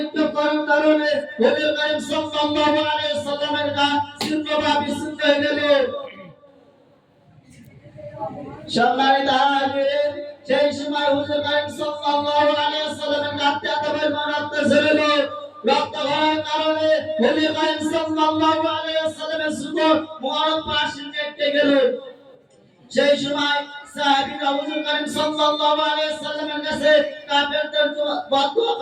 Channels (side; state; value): both; identical; correlation 1.00